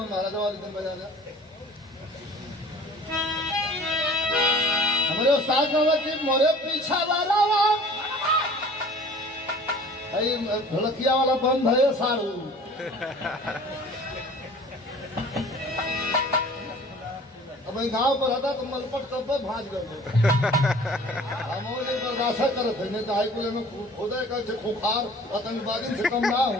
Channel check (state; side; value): normal; both; correlation 0.47